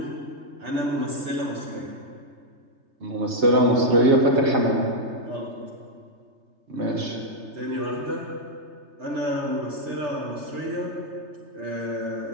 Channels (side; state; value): left; late; 3.3 ms